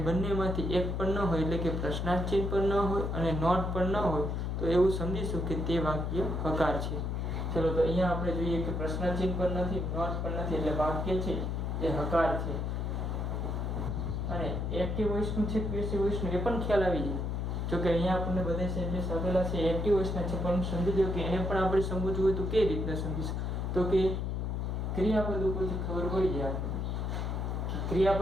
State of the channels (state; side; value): noise; left; hum, 1 dB below the sound